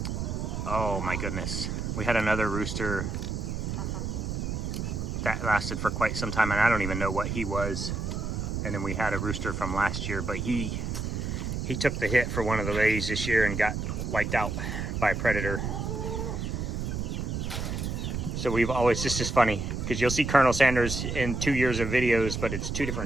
oh my goodness. We had another rooster that lasted for quite some time, and I don't even know what he was. And then we had a rooster from last year, but he took the hit for one of the lays this year and got wiped out by a predator. So we've always, this is funny, because you'll see Colonel Sanders in 2 years of videos, but it's 2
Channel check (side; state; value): right; noise; rumble, 3 dB below the sound